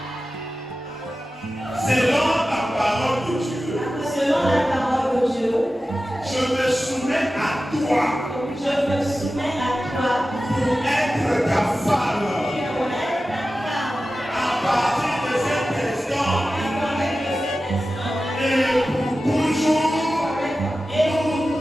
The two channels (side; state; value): both; normal; correlation 0.94